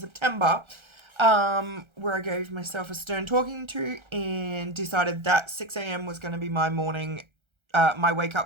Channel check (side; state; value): left; late; 1.3 ms